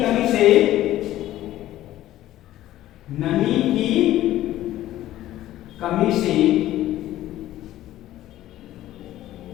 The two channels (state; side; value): quieter; right; 14.2 dB